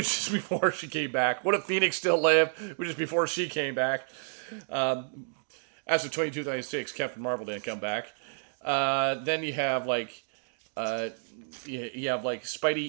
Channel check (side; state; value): left; silent; digital silence